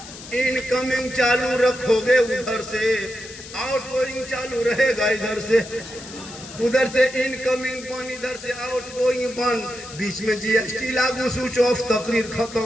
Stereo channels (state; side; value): noise; left; hiss, 15 dB below the sound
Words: इनकमिंग चालू रखोगे उधर से, आउटगोइंग चालू रहेगा इधर से। उधर से इनकमिंग बंद, इधर से आउटगोइंग बंद, बीच में जीएसटी लागू, स्विच ऑफ, तकरीर खत्म।